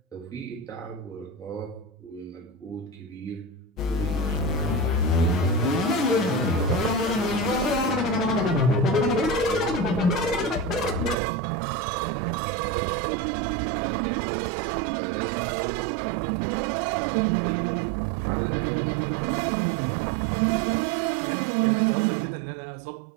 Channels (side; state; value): left; drops out; at 11.2 s